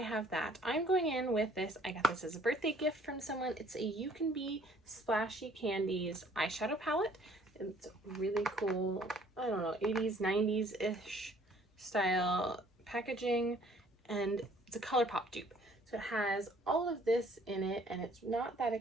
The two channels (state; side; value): normal; both; correlation 0.58